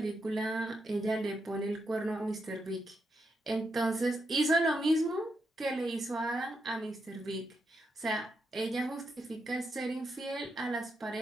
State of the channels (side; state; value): both; normal; correlation 0.83